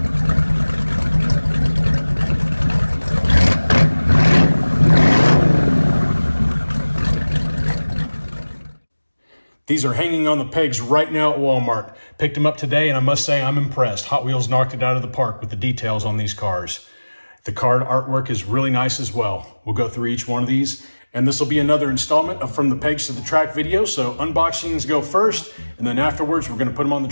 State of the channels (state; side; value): inverted; both; correlation -1.00